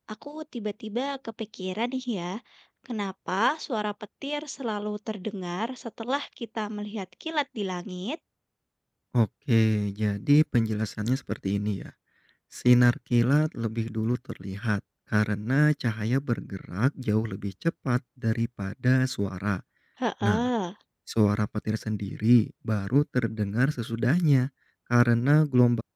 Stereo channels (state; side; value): identical; both; correlation 1.00